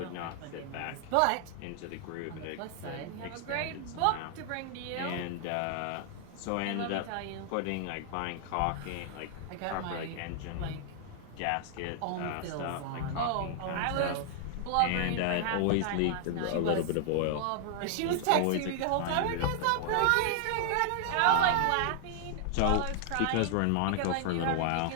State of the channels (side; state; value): both; different; correlation 0.00